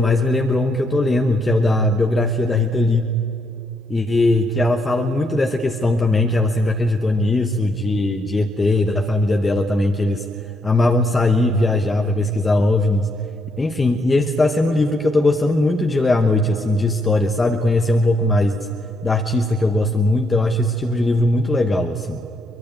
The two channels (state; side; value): normal; both; correlation 0.75